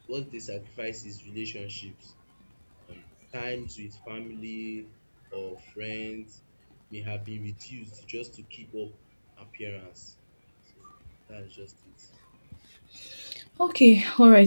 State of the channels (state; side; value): inverted; both; correlation -1.00